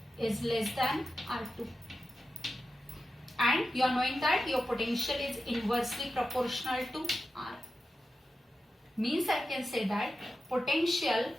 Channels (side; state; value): both; normal; correlation 0.91